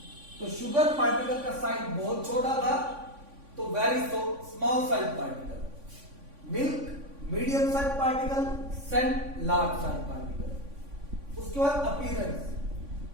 तो शुगर पार्टिकल का साइज बहुत छोटा था, तो very small size particle. Milk medium size particle, sand large size particle. उसके बाद अपीयरेंस,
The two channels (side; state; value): left; late; 3.5 ms